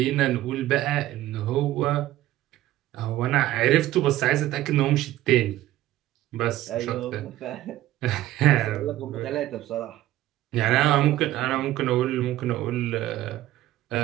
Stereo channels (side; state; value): left; quieter; 14.9 dB